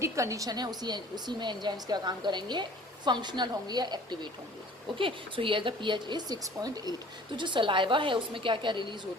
कंडीशन है उसी में एंजाइम्स क्या काम करेंगे? फंक्शनल होंगे या एक्टिवेट होंगे. Okay. So here the pH is 6.8. तो जो सलाइवा है उसमें क्या क्या रिलीज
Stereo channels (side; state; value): both; normal; correlation 0.49